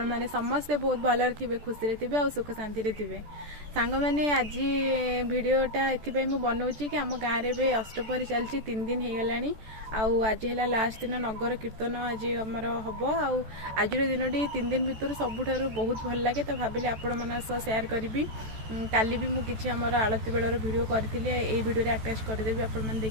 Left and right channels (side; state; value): left; late; 14 ms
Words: माने समस्ते बहुत भलर थिबे खुशी रे थिबे और सुख शांति रे थिबे। सांग माने आज वीडियोटा एथिपाई मु बनाउछि कि हम गाँव रे अष्टपहरी चलछि 3 दिन हे गलानी आउ आज है लास्ट दिन नगर कीर्तन आज हमर हबो आउ आज दिनटी 3 दिन भितर सबुठारु बहुत भल लागे तो भाबिले आपण माना सह शेयर करबी। काली भी मु किछि हमर आलती बेलर वीडियो करथिले एई वीडियो रे अटैच कर देबी आपण माने